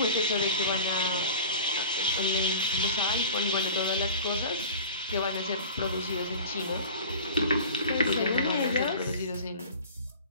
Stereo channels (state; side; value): inverted; both; correlation -0.38